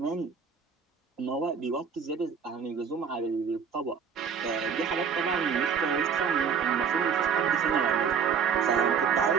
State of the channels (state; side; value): quieter; left; 6.5 dB